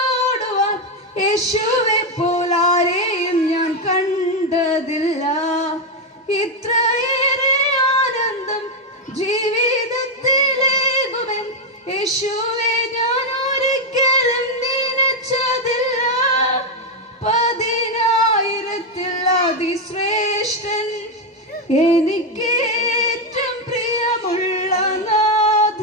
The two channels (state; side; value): normal; both; correlation 0.03